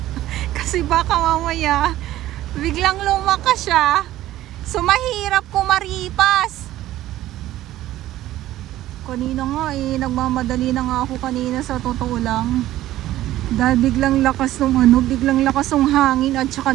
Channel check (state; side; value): quieter; left; 14.5 dB